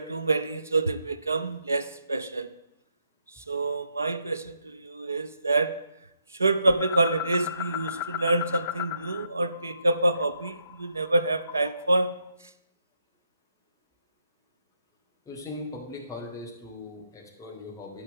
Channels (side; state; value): both; inverted; correlation -0.78